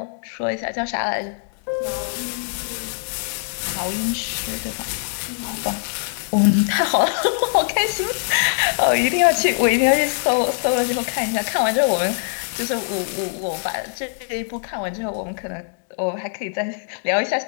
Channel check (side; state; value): right; silent; digital silence